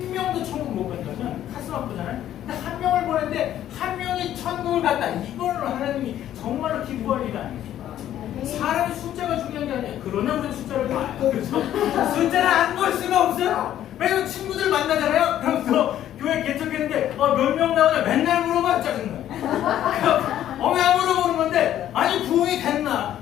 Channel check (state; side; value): quieter; right; 11.7 dB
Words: 천국 못 간다면 가슴 아프잖아요. 근데 1명을 보냈는데 1명이 천국을 갔다. 이거는 하나님이 정말로 기뻐할 일이 아니에요. 사람의 숫자가 중요한 게 아니에요. 그러나 우리 숫자를 봐요. 그렇죠? 숫자를 안 볼 수가 없어요. 왜냐면 친구들 만나잖아요. 그럼 교회 개척했는데 몇 명 나오냐 맨날 물어봐. 짜증나요. 왜 안 물어보는 건데 아니 부흥이 됐나?